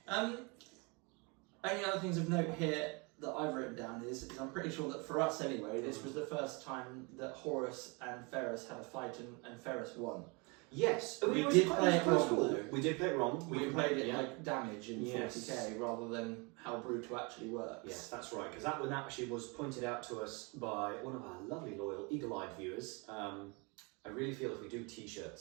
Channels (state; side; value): quieter; left; 30.1 dB